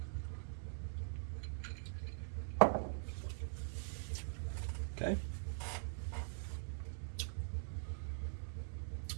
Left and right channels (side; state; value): left; silent; digital silence